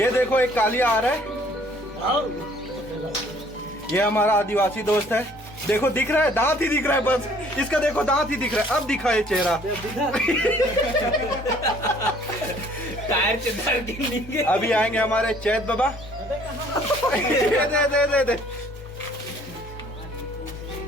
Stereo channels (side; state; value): both; normal; correlation 0.58